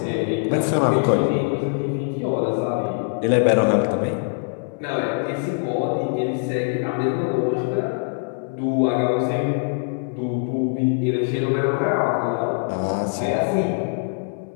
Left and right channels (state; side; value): silent; right; digital silence